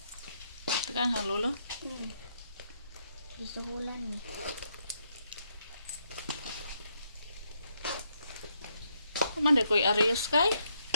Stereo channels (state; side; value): inverted; both; correlation -0.77